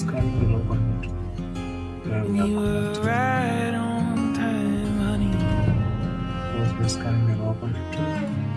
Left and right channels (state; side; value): identical; both; correlation 1.00